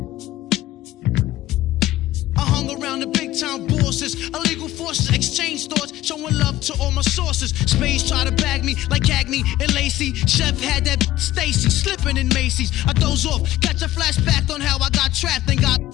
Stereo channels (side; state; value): right; quieter; 15.2 dB